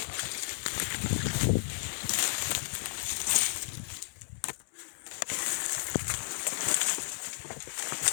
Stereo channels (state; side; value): silent; right; 56 dB below the other